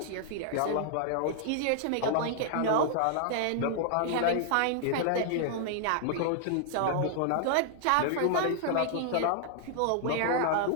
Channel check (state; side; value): different; both; correlation -0.01